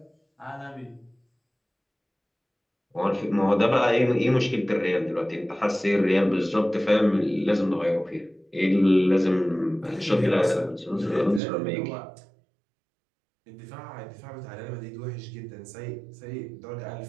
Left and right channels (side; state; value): left; drops out; at 11.4 s